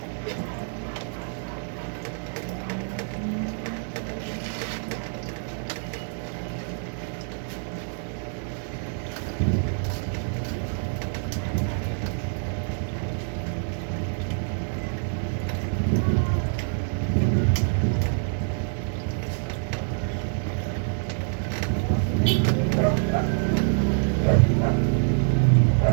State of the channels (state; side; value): silent; left; 57 dB below the other